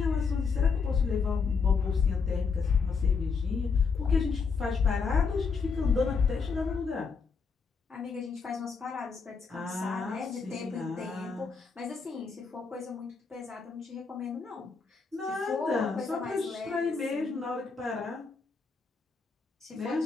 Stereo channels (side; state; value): right; quieter; 5.2 dB